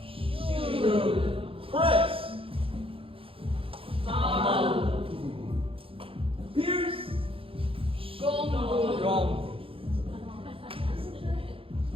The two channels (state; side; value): late; left; 0.27 ms